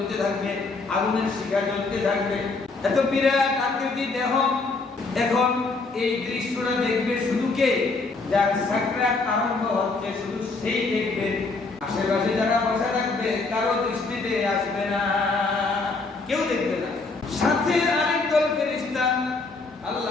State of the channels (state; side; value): quieter; right; 3.8 dB